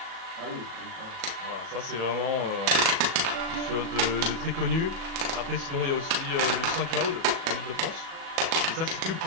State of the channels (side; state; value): left; late; 37 ms